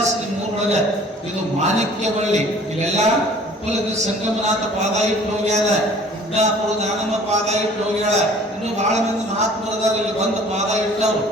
ನಿಮ್ಮೂರೊಳಗ. ಇದು ಮಾಣಿಕ್ಯ ಬಳ್ಳಿ, ಇಲ್ಲೆಲ್ಲ ಉಪ್ಪಲಗಿ ಸಂಗಮನಾಥ ಪಾದ ಇಟ್ಟು ಹೋಗ್ಯಾರ, ಗುಡ್ಡಾಪುರ ದಾನಮ್ಮ ಪಾದ ಇಟ್ಟು ಹೋಗ್ಯಾಳ, ಇನ್ನು ಬಹಳ ಮಂದಿ ಮಹಾತ್ಮರದಾರ ಇಲ್ಲಿ ಬಂದು ಪಾದ ಇಟ್ಟವ್ರು.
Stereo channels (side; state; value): both; normal; correlation 0.51